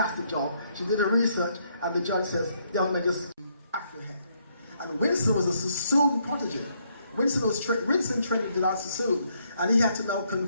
job. She did her research, and the judge says, "Young man, just Afro hair." And Winston was a Sassoon prodigy. Winston trained in Dilan Sassoon, and he had to now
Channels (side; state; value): both; inverted; correlation -0.73